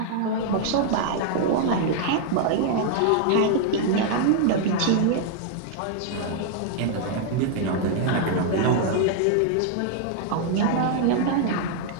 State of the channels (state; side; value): different; both; correlation 0.00